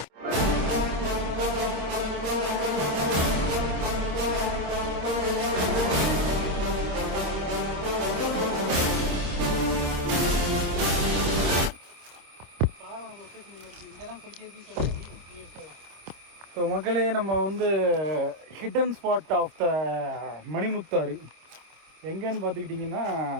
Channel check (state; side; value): late; left; 26 ms